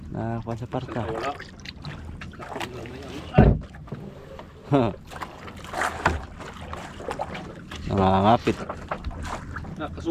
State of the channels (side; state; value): both; identical; correlation 1.00